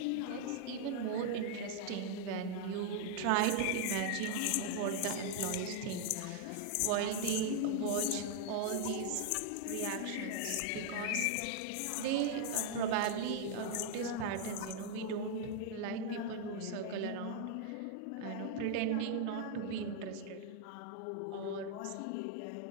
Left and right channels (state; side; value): different; both; correlation 0.00